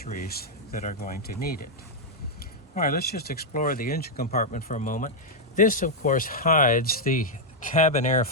that are going to need it. All right, let's just explore the engine compartment for a moment. This, of course, hides the cabin air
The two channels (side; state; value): both; normal; correlation -0.03